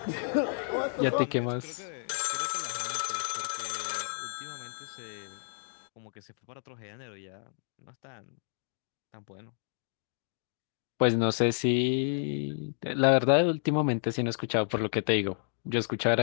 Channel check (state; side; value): silent; right; digital silence